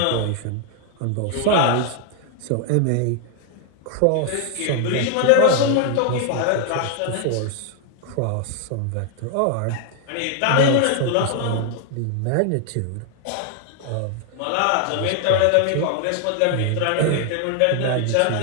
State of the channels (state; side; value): different; both; correlation 0.00